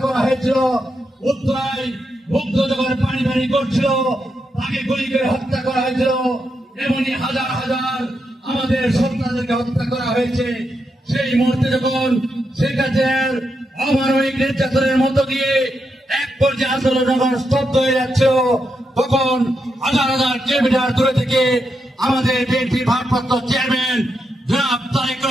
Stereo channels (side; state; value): both; normal; correlation 0.84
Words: করা হয়েছিল। উত্তরায় মুগ্ধ যখন পানি পানি করছিল তাকে গুলি করে হত্যা করা হয়েছিল। এমনই হাজার হাজার আমাদের সন্তানদেরকে হত্যা করা হয়েছে। সেই মুহূর্তে যখন শেখ হাসিনার অমানবিক নির্যাতনের মধ্য দিয়ে এক পর্যায়ে আন্দোলন যখন স্তব্ধ হয়ে যাচ্ছিল, তখন হাজার হাজার কিলোমিটার দূরে থেকে আমাদের বিএনপির ভারপ্রাপ্ত চেয়ারম্যান জনাব তারেক